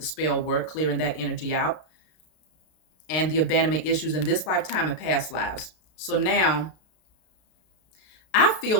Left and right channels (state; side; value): late; right; 32 ms